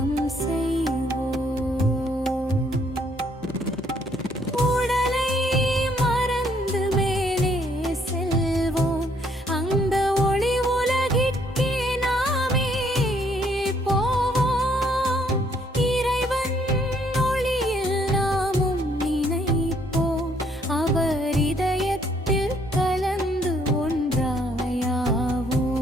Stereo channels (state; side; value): normal; both; correlation 0.67